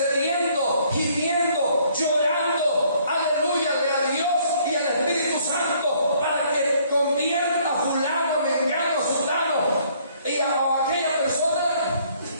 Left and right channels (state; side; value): inverted; both; correlation -0.63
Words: gimiendo, llorando, aleluya, a Dios y al Espíritu Santo para que convierta a fulano, mengano, sultano y a aquella persona?